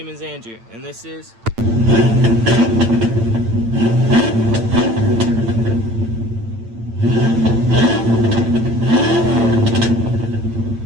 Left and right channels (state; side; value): late; left; 8.9 ms